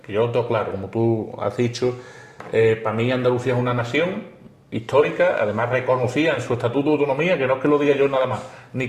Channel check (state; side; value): identical; both; correlation 1.00